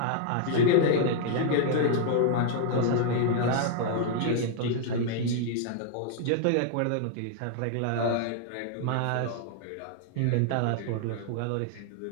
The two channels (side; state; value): both; different; correlation -0.01